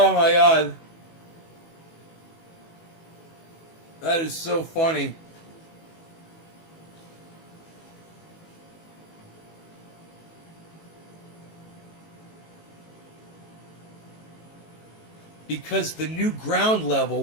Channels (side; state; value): right; late; 18 ms